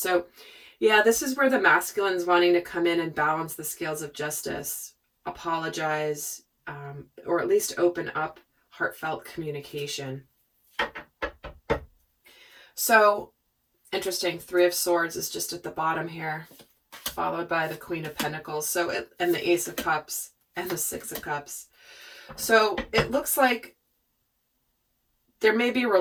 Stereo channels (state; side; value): identical; both; correlation 1.00